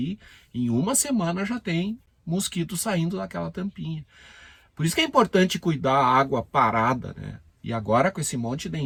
em uma semana já tem mosquito saindo daquela tampinha. Por isso que é importante cuidar a água parada, né? E agora com esse monte de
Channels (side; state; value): both; identical; correlation 1.00